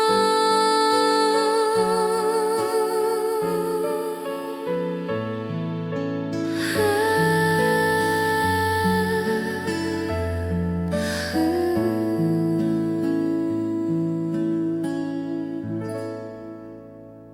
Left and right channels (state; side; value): identical; both; correlation 1.00